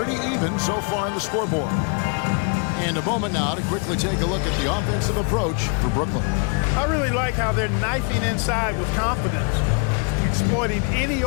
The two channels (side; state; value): right; quieter; 37.9 dB